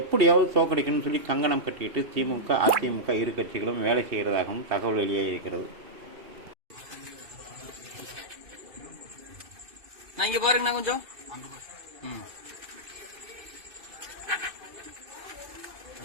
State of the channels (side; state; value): left; late; 2.6 ms